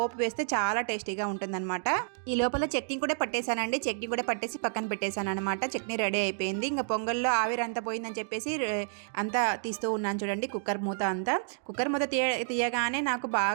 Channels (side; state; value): left; silent; digital silence